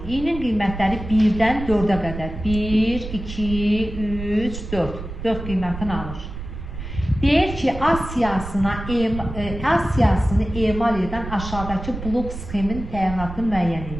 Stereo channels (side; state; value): right; noise; rumble, 9 dB below the sound